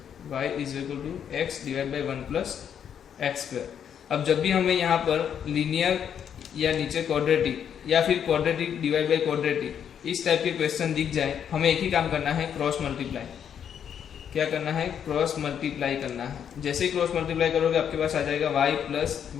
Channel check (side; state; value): right; quieter; 8.5 dB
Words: y is equal to x divide by 1 plus x square. अब जब भी हमें यहाँ पर लीनियर या नीचे क्वाड्रेटिक या फिर क्वाड्रेटिक डिवाइड बाई क्वाड्रेटिक इस टाइप के क्वेश्चन दिख जाए, हमें एक ही काम करना है, क्रॉस मल्टीप्लाई। क्या करना है, क्रॉस मल्टीप्लाई करना है। जैसे ही क्रॉस मल्टीप्लाई करोगे आपके पास आ जाएगा y plus